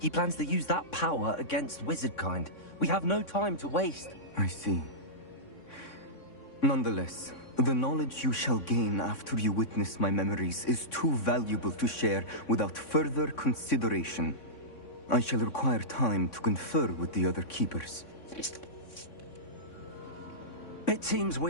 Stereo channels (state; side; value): late; right; 3.6 ms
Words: plans to use that power against wizardkind. We have no time to waste. I see. Nonetheless, the knowledge you shall gain after you witness my memories is too valuable to share without further consideration. I shall require time to confer with the other keepers. It seems